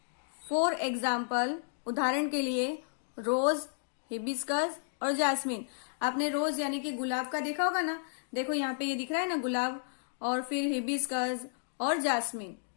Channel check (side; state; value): right; silent; digital silence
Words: फॉर एग्जाम्पल उदाहरण के लिए रोज, हिबिस्कस और जास्मिन. आपने रोज यानी कि गुलाब का देखा होगा ना. देखो यहाँ पे ये दिख रहा है ना गुलाब, और फिर हिबिस्कस और जास्मिन.